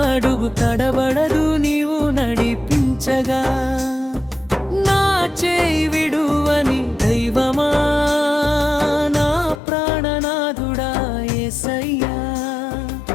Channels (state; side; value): drops out; right; at 9.6 s